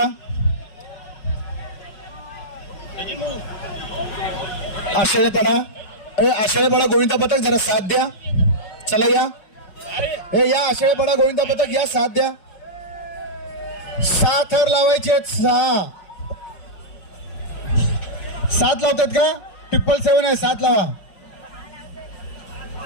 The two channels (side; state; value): right; late; 5.4 ms